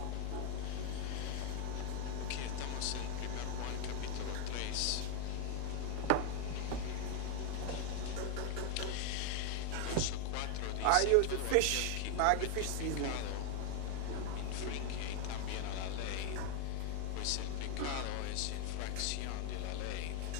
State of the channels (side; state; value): both; different; correlation 0.00